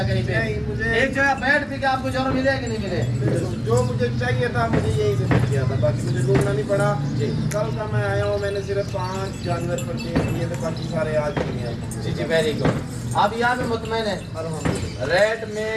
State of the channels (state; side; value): identical; both; correlation 1.00